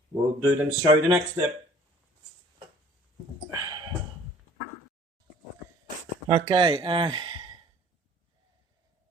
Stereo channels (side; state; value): both; normal; correlation 0.52